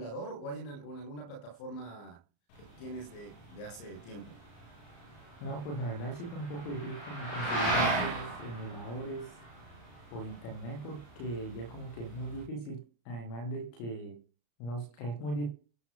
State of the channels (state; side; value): late; right; 34 ms